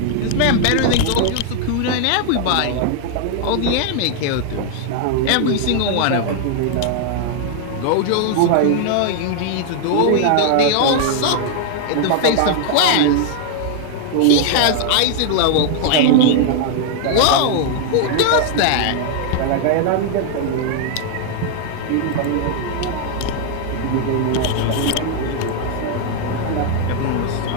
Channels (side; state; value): both; different; correlation 0.00